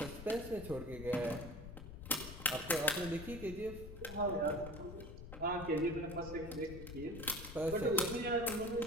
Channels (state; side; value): noise; left; rumble, 11 dB below the sound